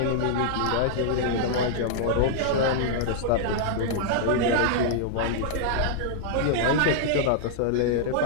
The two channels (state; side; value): different; both; correlation -0.01